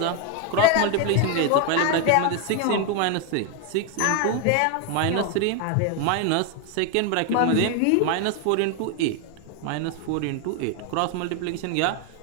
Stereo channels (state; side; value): different; both; correlation 0.01